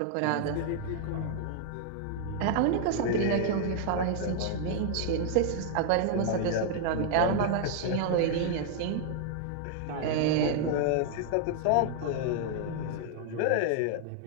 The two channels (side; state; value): both; different; correlation -0.01